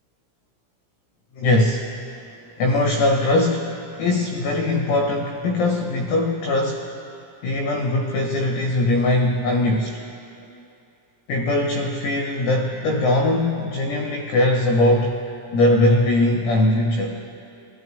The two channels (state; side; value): late; right; 17 ms